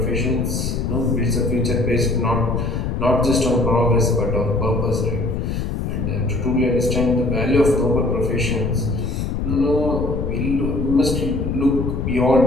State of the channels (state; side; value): noise; left; rumble, 2 dB below the sound